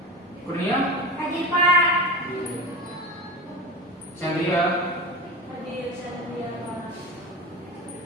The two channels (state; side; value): normal; both; correlation 0.28